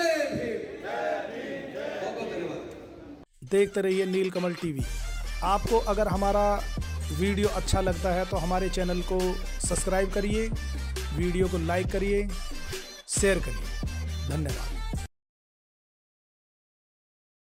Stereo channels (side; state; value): both; identical; correlation 1.00